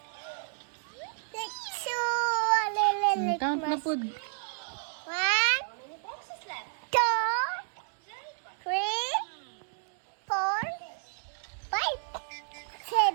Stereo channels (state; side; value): silent; left; digital silence